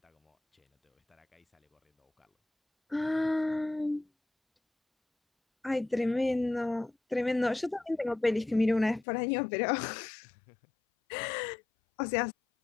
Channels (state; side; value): drops out; right; at 9.1 s